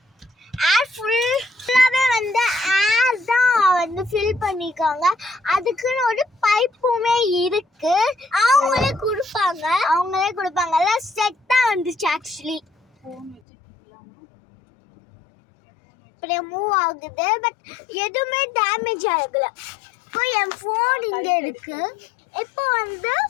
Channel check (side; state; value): right; drops out; at 13.4 s